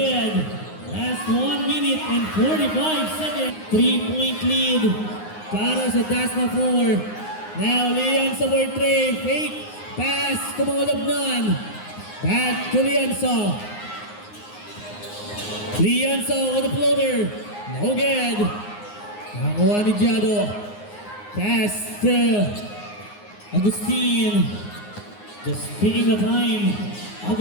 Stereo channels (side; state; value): right; late; 9.6 ms